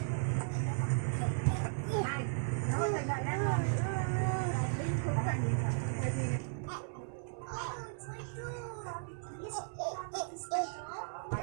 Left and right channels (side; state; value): left; silent; 54 dB below the other